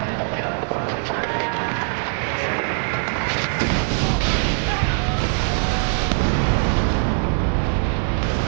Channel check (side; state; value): left; silent; 58 dB below the other